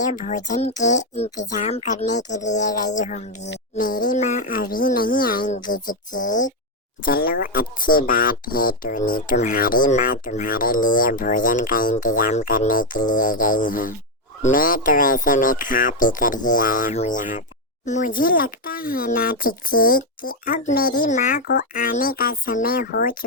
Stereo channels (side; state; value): both; normal; correlation 0.04